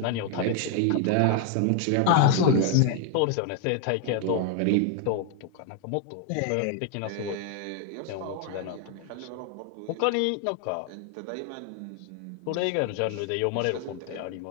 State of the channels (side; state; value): both; different; correlation 0.00